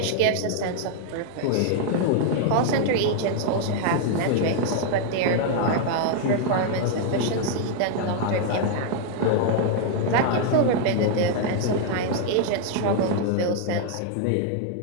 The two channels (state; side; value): different; both; correlation 0.00